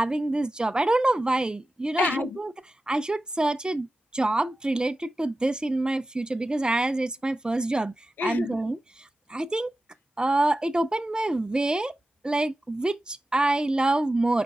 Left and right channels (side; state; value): both; normal; correlation 0.94